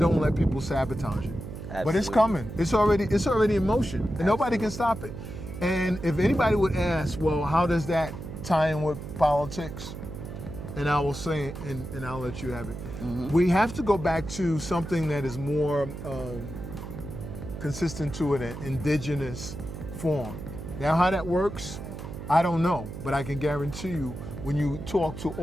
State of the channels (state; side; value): noise; right; hum, 10 dB below the sound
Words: let people sabotage it. Absolutely. But it's coming. It's already in motion, and nobody can stop it. And if anybody would ask, well, how does that tie in with politics? And I will say, and I'll let you have it. We have to go back to something that is more consistent to an indigenous form. Now, how that works, I don't know, but I can guarantee you, when you talk to